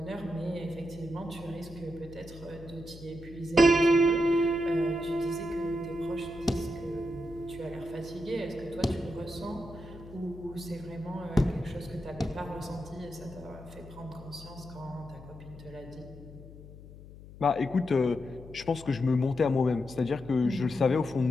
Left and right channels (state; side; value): noise; left; hum, 17 dB below the sound